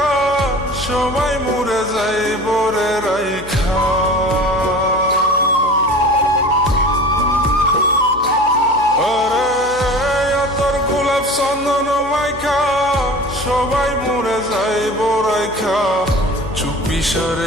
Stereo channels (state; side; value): noise; left; hum, 19 dB below the sound